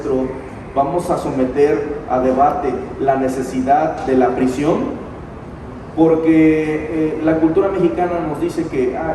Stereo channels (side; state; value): both; identical; correlation 1.00